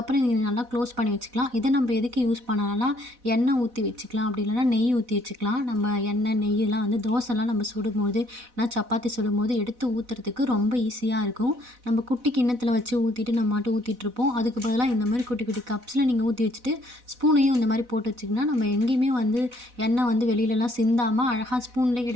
நீங்கள் நல்லா க்ளோஸ் பண்ணி வச்சுக்கலாம். இதை நம்ம எதுக்கு யூஸ் பண்ணலாம்னா எண்ணெய் ஊற்றி வச்சுக்கலாம், அப்படி இல்லைனா நெய் ஊற்றி வச்சுக்கலாம். நம்ம எண்ணெய் நெய்யெல்லாம் வந்து தோசைலாம் நம்ம சுடும்போது நான் சப்பாத்தி சுடும்போது எடுத்து ஊற்றுறதுக்கு ரொம்ப ஈஸியாக இருக்கும். நம்ம குட்டி கிண்ணத்தில் வச்சு ஊற்றிட்டு நம்ம மட்டும் ஊற்றிட்டுருப்போம். அதுக்கு பதிலாக இந்த மாதிரி குட்டி குட்டி கப்ஸில் நீங்கள் ஊற்றி வச்சுட்டு ஸ்பூனையும் இந்த மாதிரி போட்டு வச்சிங்கன்னா நம்ம எங்கேயுமே வந்து எண்ணெய் வந்து வெளியிலலாம் சிந்தாமல் அழகாக ஸ்பூன்லேயே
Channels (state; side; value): late; left; 4.0 ms